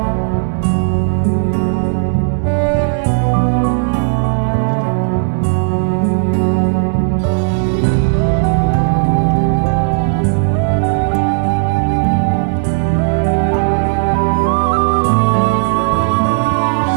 করে চলে যাবো। তারপর আমি এখানে এসে দেখি মেকআপ আর্টিস্টের বাড়িতে এই যে গরম জল হচ্ছে, সেটা এখনো ফুটছে শেষ করে, ওটা দিয়ে এখন উনি বাথরুমে যাবে। তারপর ওনার যা কাজে বাজ আছে সব কিছু সারবে, তারপরে উনি রেডি হবে। আর সেটা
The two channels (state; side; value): silent; left; digital silence